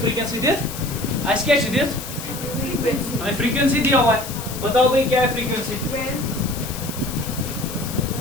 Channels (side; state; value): left; noise; hiss, 10 dB below the sound